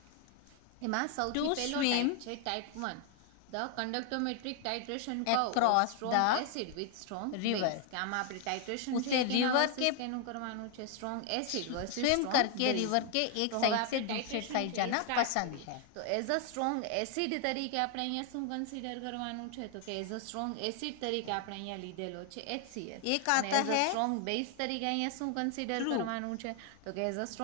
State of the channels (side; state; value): both; different; correlation 0.00